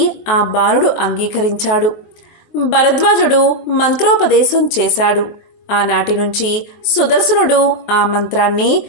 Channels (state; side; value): late; right; 23 ms